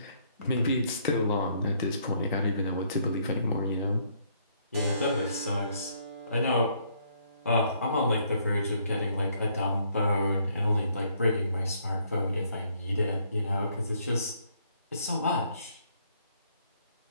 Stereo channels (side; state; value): both; inverted; correlation -0.68